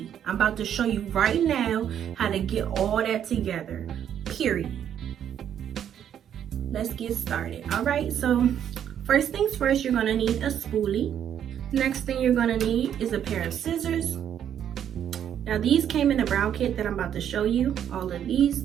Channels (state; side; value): quieter; left; 9.5 dB